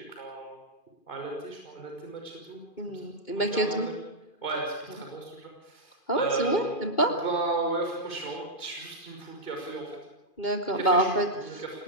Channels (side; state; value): right; late; 2.4 ms